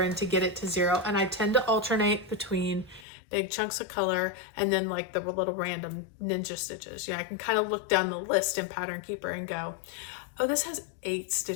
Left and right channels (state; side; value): drops out; right; at 3.1 s